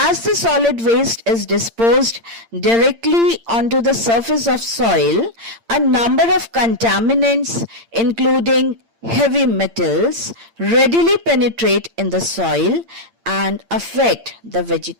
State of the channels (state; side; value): late; left; 8.8 ms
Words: the solid waste is disposed directly onto the surface of soil, a number of contaminants, including heavy metals, readily penetrate in the soil and affect the